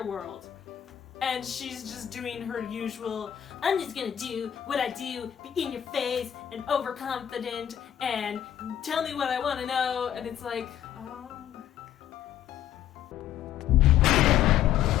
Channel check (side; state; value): right; quieter; 10.7 dB